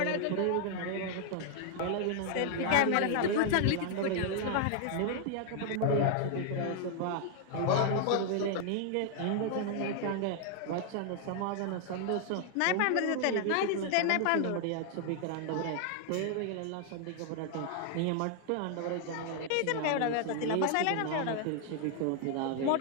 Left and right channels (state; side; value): different; both; correlation 0.00